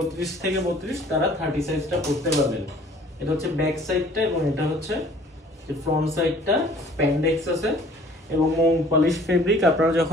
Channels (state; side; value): normal; both; correlation 0.53